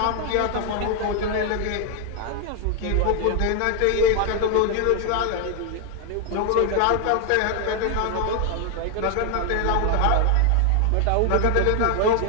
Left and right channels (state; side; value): different; both; correlation 0.00